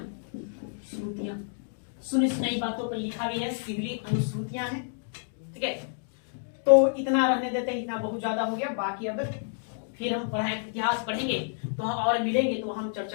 सुनी सुनाई बातों पर लिखा गया है, सिहली अनुश्रुतियां हैं। ठीक है, तो इतना रहने देते हैं, इतना बहुत ज्यादा हो गया। बाकी अब फिर हम इतिहास पढ़ेंगे तो और मिलेंगे तो हम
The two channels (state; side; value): silent; right; digital silence